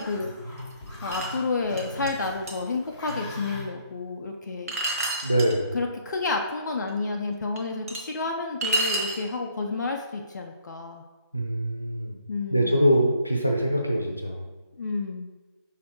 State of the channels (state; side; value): inverted; both; correlation -0.68